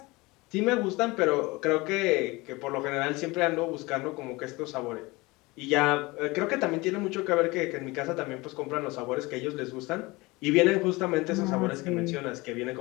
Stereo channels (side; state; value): right; quieter; 23.1 dB